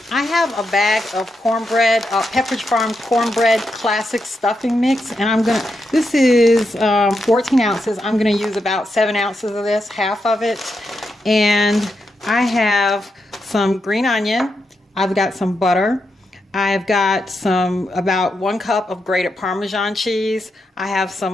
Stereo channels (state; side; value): normal; both; correlation 0.84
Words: I have a bag of cornbread, Pepperidge Farm cornbread classic stuffing mix, and this is 14 ounces. I'm going to use about 7 ounces of this, half of it. And I have some green onion. I've got some butter. I've got about 1 cup of grated Parmesan cheese. I have